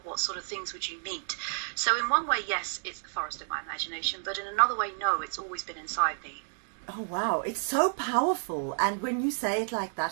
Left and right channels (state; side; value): silent; left; digital silence